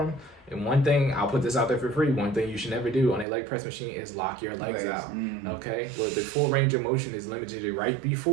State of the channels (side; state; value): left; drops out; at 3.2 s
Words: And one thing, I'll put this out there for free, one thing you should never do on a leg press machine is lock your legs out, okay? Well, the full range of motion is limited to right